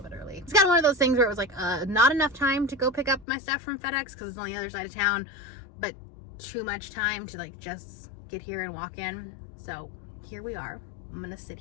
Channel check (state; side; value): drops out; right; at 3.2 s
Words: bit early. It's kind of one of those things where it was like not enough time to go pick up my stuff from FedEx because it's on the other side of town, but too much time to like just get here and walk in. So here we are. I'm gonna sit